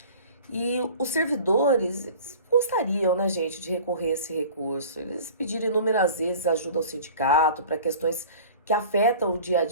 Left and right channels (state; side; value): inverted; both; correlation -0.43